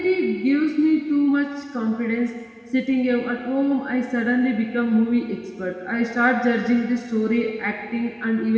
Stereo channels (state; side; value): identical; both; correlation 1.00